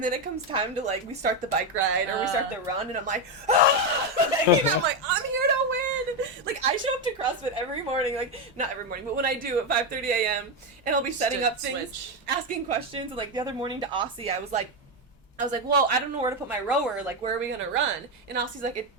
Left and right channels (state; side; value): normal; both; correlation 0.08